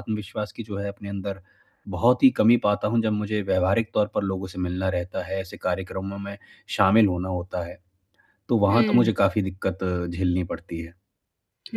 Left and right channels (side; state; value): both; identical; correlation 1.00